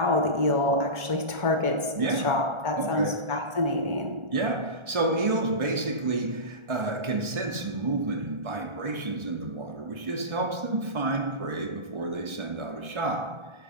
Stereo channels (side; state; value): left; late; 1.4 ms